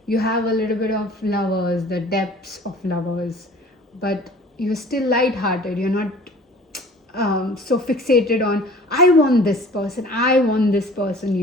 you have a little bit of lovers, the depths of lovers, but you're still lighthearted. You're not so fixated on, I want this person,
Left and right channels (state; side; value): normal; both; correlation 0.47